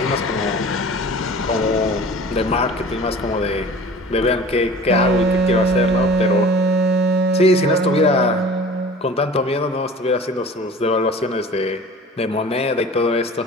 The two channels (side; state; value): both; normal; correlation 0.43